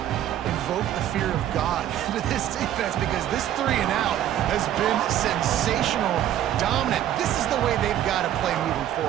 invoked the fear of God into this defense, because this 3 and out has been sensational, dominant. This is the way they've got to play moving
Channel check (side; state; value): left; quieter; 11.6 dB